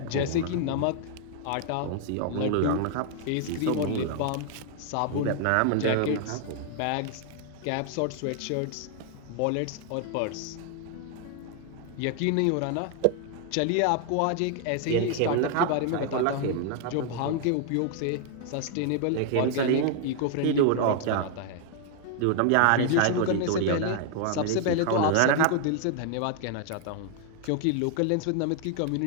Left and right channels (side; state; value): both; different; correlation 0.00